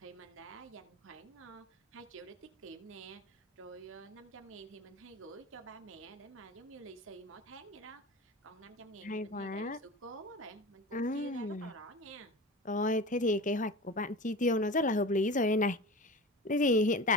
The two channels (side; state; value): both; normal; correlation 0.32